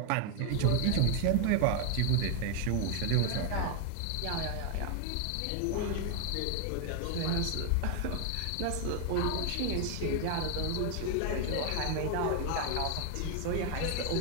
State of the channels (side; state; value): both; different; correlation 0.00